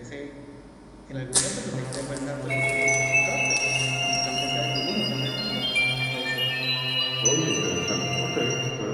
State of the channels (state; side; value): identical; both; correlation 1.00